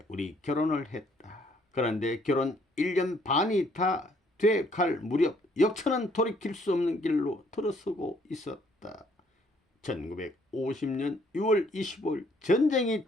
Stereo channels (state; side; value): normal; both; correlation 0.65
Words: 우리 결혼을 했다. 그런데 결혼 1년 반이 다 돼갈 무렵 역사는 돌이킬 수 없는 길로 들어서고 있었다. 1950년 6월 25일 전쟁이